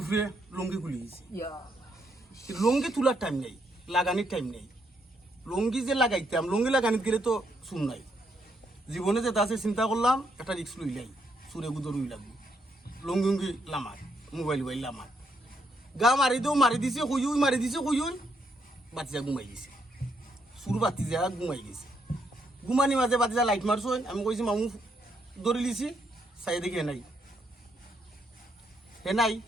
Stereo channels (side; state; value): both; normal; correlation 0.75